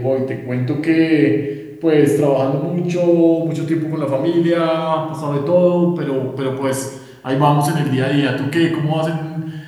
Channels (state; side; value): identical; both; correlation 1.00